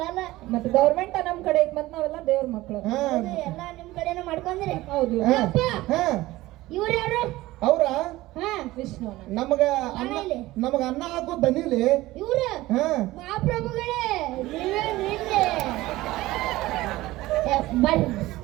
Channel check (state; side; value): quieter; left; 17.8 dB